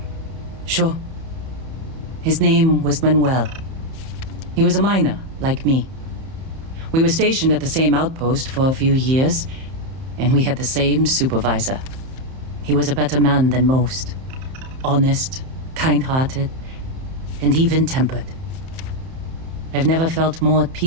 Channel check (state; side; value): late; left; 31 ms